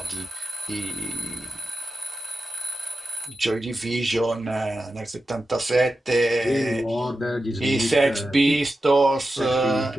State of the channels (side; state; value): both; normal; correlation 0.91